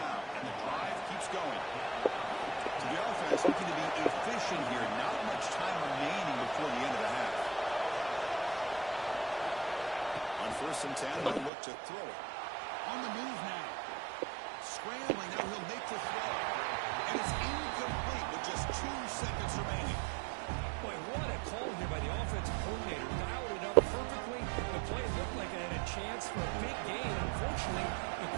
and the drive keeps going. So the offense looking to be efficient here. Not much time remaining before the end of the half. On first and 10, they'll look to throw it. On the move now. Scrambling, now he'll make the throw. And it's incomplete with just 2 seconds remaining. Boy, what a call here by the offensive coordinator. Dialed it up perfectly. The play looked like it had a chance for a big gain. Unfortunately, the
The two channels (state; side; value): drops out; left; at 11.5 s